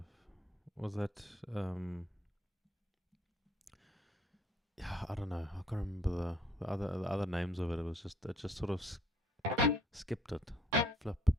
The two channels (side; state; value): both; normal; correlation 0.63